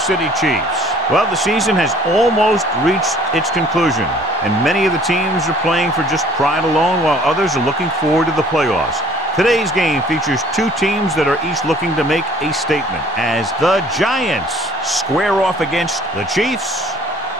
City Chiefs. Well, the season has almost reached its conclusion, and many of the teams are playing for just pride alone, while others are looking forward to the playoffs. Today's game features two teams that are each looking to make a statement as the Giants square off against the Chiefs.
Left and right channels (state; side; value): normal; both; correlation 0.55